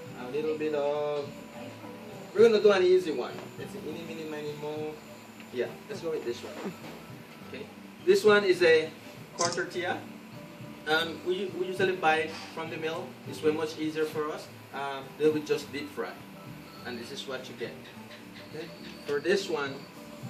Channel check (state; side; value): identical; both; correlation 1.00